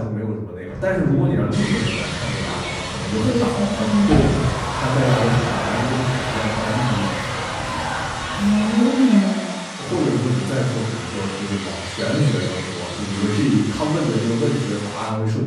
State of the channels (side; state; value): both; identical; correlation 1.00